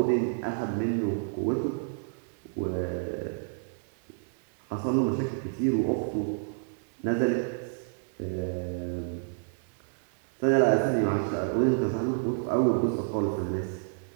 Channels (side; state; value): left; silent; digital silence